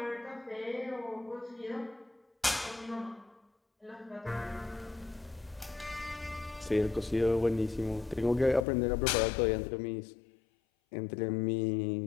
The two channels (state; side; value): drops out; right; at 8.7 s